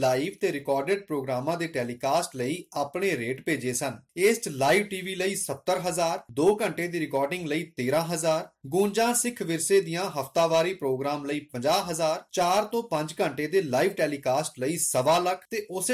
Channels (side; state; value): both; identical; correlation 1.00